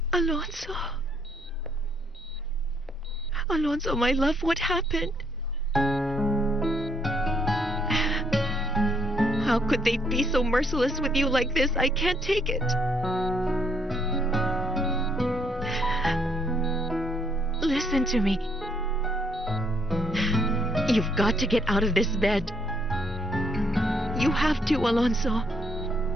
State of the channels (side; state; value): both; normal; correlation 0.70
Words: Alonso. Alonso, my love, what happened? How could they be so merciless with you like this? I can't take it. Listen to me. You've got to get out of this bed. You have to, Alonso.